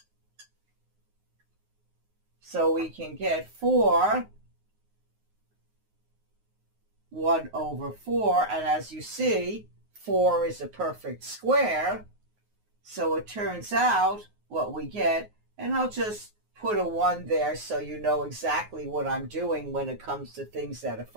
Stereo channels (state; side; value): late; left; 9.5 ms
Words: So we can get 4, 1 over 4, and as you see, 4 is a perfect square. So it turns out what we get, and I'll just put a 1 there so you know exactly what I'm doing when it comes to things that are